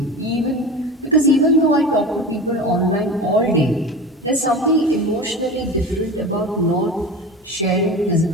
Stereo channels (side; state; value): both; normal; correlation 0.31